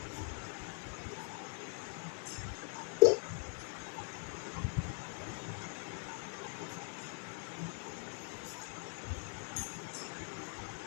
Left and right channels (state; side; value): silent; right; 50 dB below the other